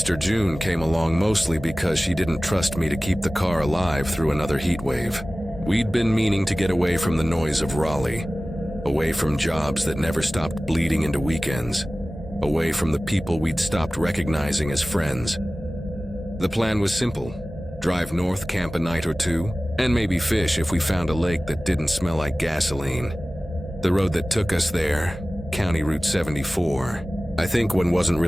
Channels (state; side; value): normal; both; correlation 0.97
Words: June came along mostly because she didn't trust me to keep the car alive through another heat wave. We'd been meaning to get away from the noise of Raleigh, away from jobs that never stopped bleeding into weekends, away from the people we'd stopped recognizing as friends. The plan was simple: drive north, camp a night or two, and maybe fish if we found a lake that didn't smell like gasoline. The road that took us there, County Route 74, I think one wasn't